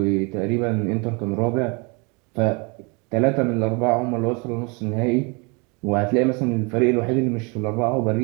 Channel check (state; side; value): quieter; left; 30.5 dB